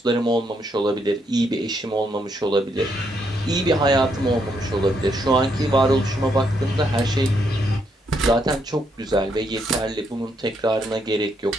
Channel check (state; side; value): normal; both; correlation 0.76